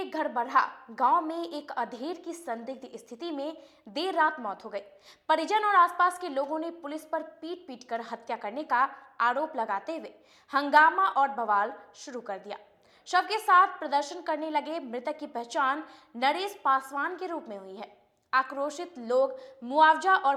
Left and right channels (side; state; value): both; identical; correlation 1.00